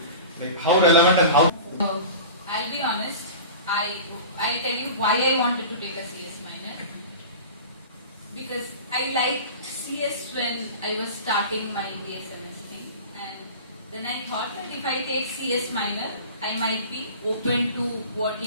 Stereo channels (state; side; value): inverted; both; correlation -0.36